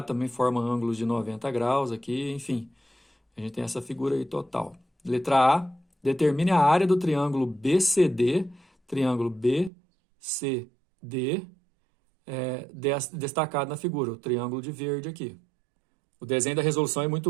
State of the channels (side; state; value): left; drops out; at 9.7 s